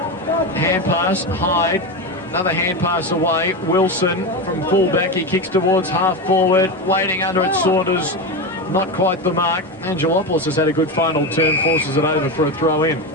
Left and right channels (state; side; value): normal; both; correlation 0.17